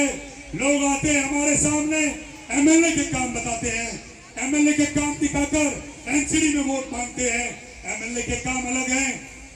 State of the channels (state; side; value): identical; both; correlation 1.00